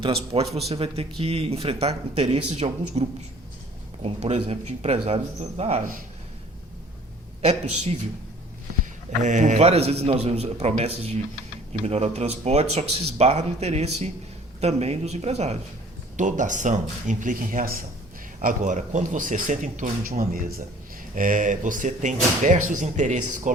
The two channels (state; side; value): normal; both; correlation 0.52